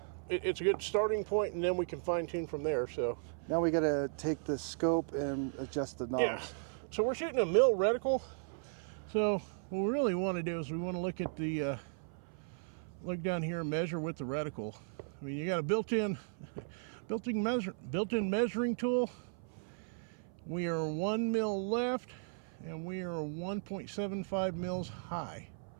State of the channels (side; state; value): left; silent; 54 dB below the other